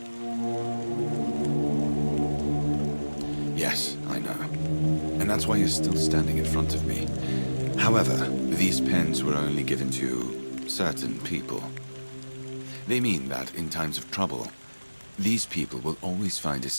Yes, I know. And that's why you're still standing in front of me. However, these pens were only given to certain people. They mean that in times of trouble, these people will always find a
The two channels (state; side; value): inverted; both; correlation -1.00